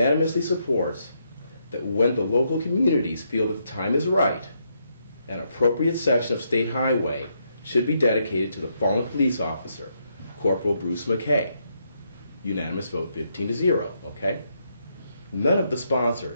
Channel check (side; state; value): both; inverted; correlation -0.77